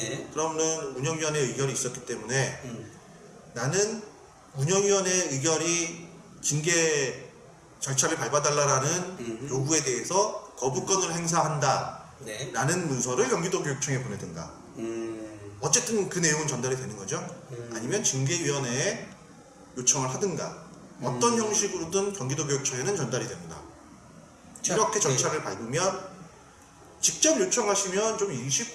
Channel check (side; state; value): both; identical; correlation 1.00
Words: 그러면 운영위원회 의결이 있었기 때문에 나는 운영위원회 의결이 징계 절차를 밟아달라라는 요구에 대해서 거부권을 행사한다. 네. 라는 문서를 경기도 교육청에 보내든가. 어쨌든 그 내용은 전달이 되는 거죠. 아니면 징계위원회에 요청을 하든가. 어떤 형식으로든 경기도 교육청에는 전달이 됩니다. 이렇게 절차를 밟으면 직접 요청하시면 좀 일이